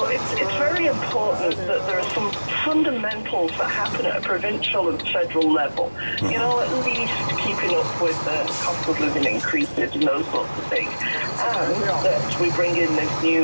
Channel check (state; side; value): inverted; both; correlation -1.00